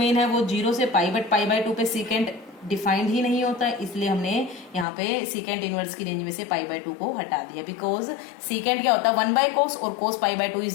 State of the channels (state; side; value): drops out; right; at 4.9 s